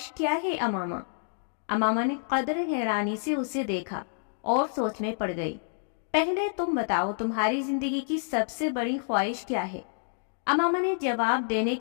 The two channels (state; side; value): silent; right; digital silence